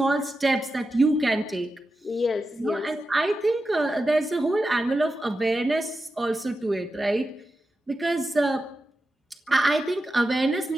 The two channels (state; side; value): normal; both; correlation 0.90